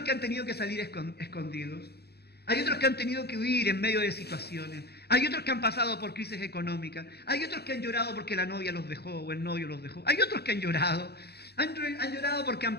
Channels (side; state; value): right; late; 0.47 ms